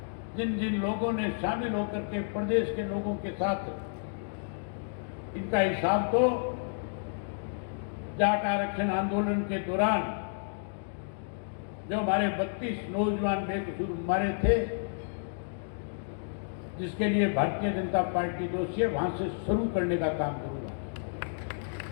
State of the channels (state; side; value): silent; right; digital silence